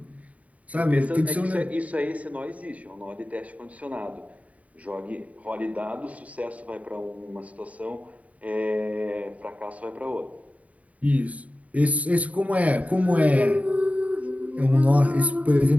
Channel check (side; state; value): left; late; 0.069 ms